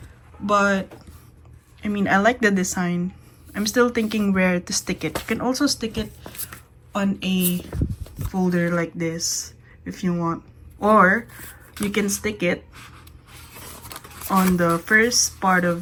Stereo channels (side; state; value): both; identical; correlation 1.00